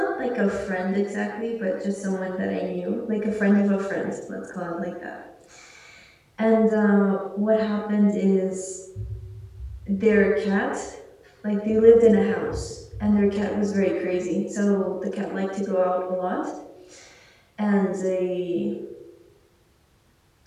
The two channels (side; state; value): both; identical; correlation 1.00